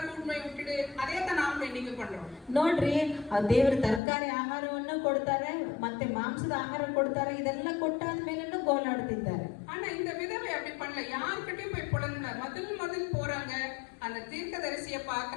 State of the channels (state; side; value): drops out; right; at 4.0 s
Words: கூட்டின்னு போய் விட்டுடு, அதே தான் நாமளும் இன்னைக்கு பண்றோம். ನೋಡ್ರಿ ದೇವರು ತರಕಾರಿ ಆಹಾರವನ್ನು ಕೊಡ್ತಾರೆ, ಮತ್ತೆ ಮಾಂಸದ ಆಹಾರ ಕೊಡ್ತಾರೆ, ಇದೆಲ್ಲ ಕೊಟ್ಟಾದ್ಮೇಲೆ ಗೋಲಾಡ್ತಿದ್ದಾರೆ. ஆனா இந்த விதவை அப்படி பண்ணல, யார்கிட்டயும் போய் புலம்பல. முதல் போறாங்க, அந்த தீர்க்கதரிசியை